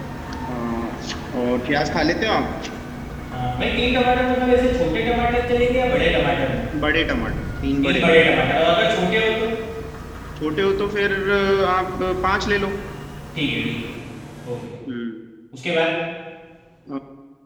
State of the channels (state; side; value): identical; both; correlation 1.00